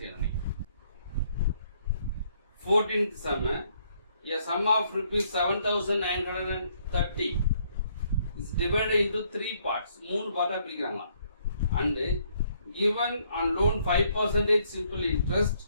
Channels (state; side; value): inverted; both; correlation -0.68